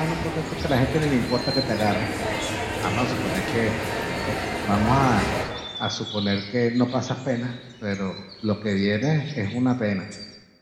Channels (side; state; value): both; identical; correlation 1.00